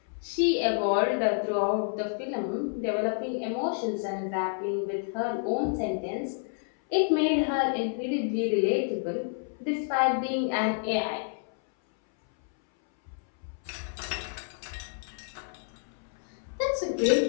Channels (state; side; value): silent; right; 58 dB below the other